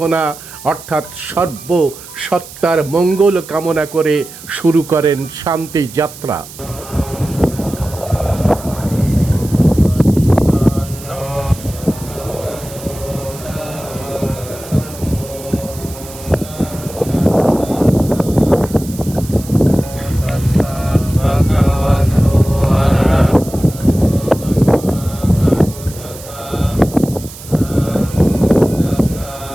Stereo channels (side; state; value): right; noise; hiss, 16 dB below the sound